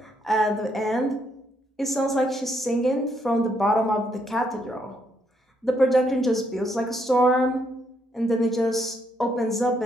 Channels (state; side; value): normal; both; correlation 0.74